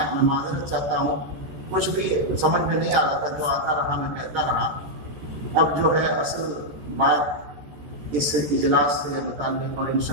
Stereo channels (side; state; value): left; late; 14 ms